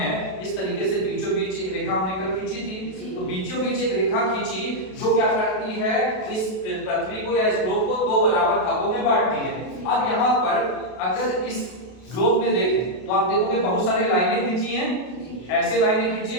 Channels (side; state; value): right; late; 32 ms